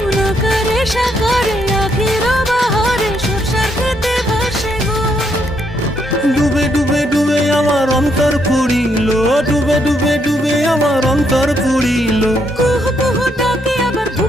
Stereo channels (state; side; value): normal; both; correlation 0.75